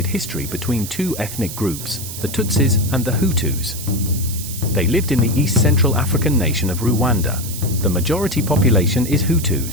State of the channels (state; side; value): noise; right; hiss, 9 dB below the sound